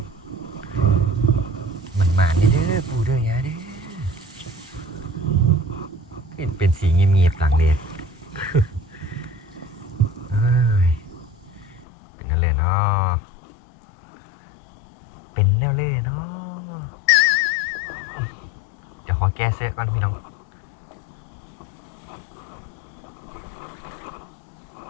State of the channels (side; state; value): right; drops out; at 11.9 s